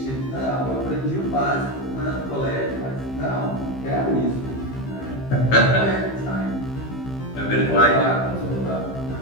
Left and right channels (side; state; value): right; late; 15 ms